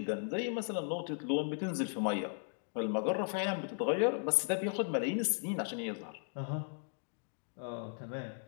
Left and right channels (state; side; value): silent; right; 53 dB below the other